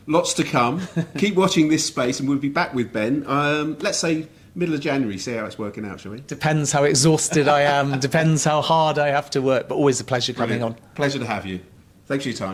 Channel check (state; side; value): identical; both; correlation 1.00